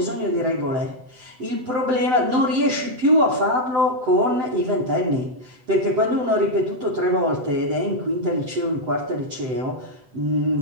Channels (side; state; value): left; late; 8.0 ms